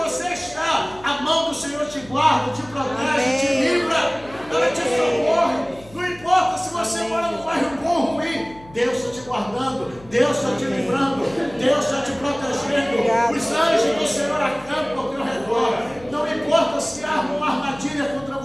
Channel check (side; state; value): left; noise; hum, 22 dB below the sound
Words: está, a mão do Senhor te guarda, te protege, te livra, ela te socorre. Não importa se você mora num bairro bom ou ruim, Deus está te guardando, Deus está te livrando, Deus está te protegendo. Os anjos do Senhor acampam ao teu redor. Não importa se arma uma armadilha contra